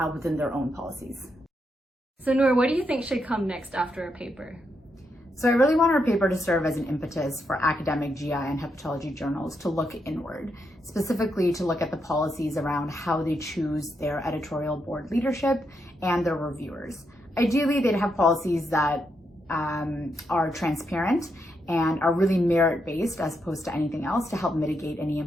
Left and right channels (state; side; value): normal; both; correlation 0.81